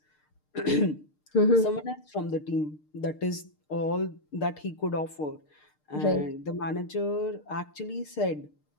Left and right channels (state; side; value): late; right; 6.6 ms